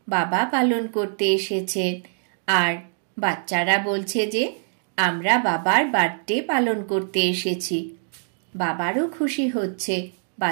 বাবা পালন করতে এসেছেন। আর বাচ্চারা বলছে যে আমরা বাবার বার্থডে পালন করতে এসেছি। বাবারও খুশি হচ্ছে,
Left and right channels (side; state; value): left; silent; digital silence